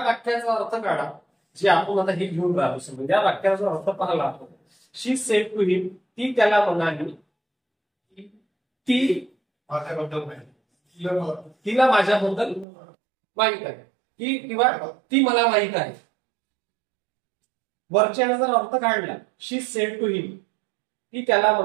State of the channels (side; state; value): left; drops out; at 12.7 s